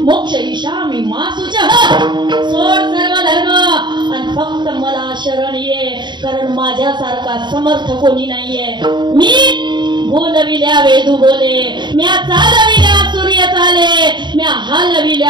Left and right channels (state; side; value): late; left; 0.22 ms